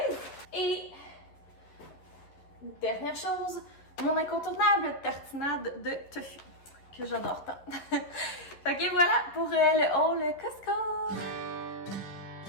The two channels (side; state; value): right; late; 11 ms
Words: Et dernière chose, mon incontournable tartinade de tofu, que j'adore tant. Fait que voilà pour le haul Costco!